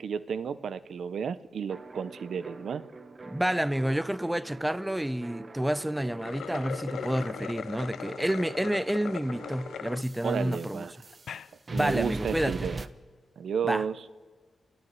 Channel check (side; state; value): both; normal; correlation 0.93